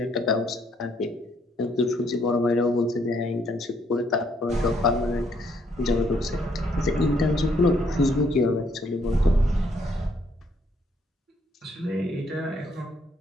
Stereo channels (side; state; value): both; normal; correlation 0.69